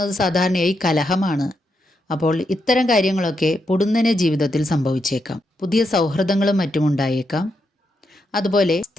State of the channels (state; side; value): normal; both; correlation 0.82